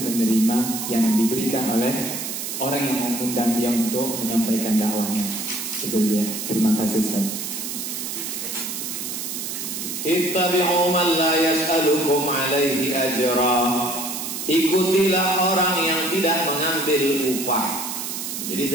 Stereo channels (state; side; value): noise; right; hiss, 5 dB below the sound